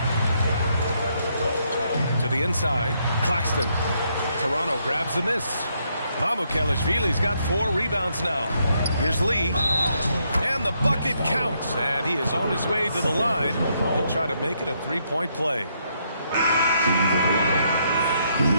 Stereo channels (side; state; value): both; inverted; correlation -0.75